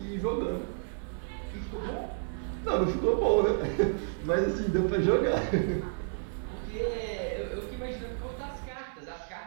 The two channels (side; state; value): left; silent; digital silence